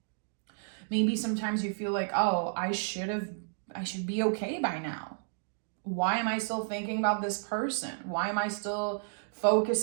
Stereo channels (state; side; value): silent; left; digital silence